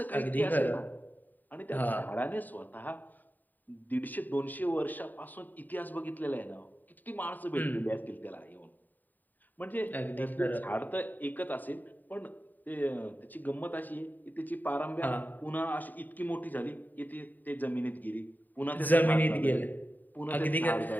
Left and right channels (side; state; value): right; late; 0.087 ms